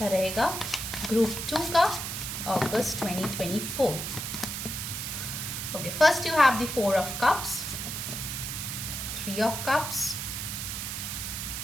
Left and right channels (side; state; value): right; noise; hiss, 4 dB below the sound